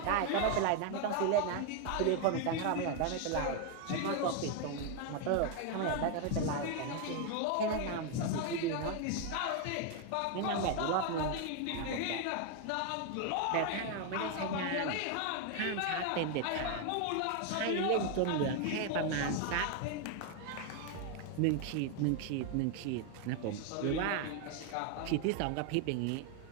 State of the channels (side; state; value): both; different; correlation 0.01